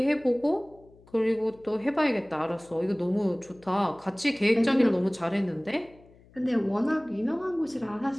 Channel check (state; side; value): noise; left; hum, 27 dB below the sound